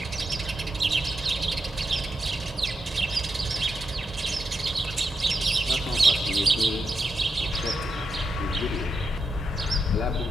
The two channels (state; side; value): normal; both; correlation 0.85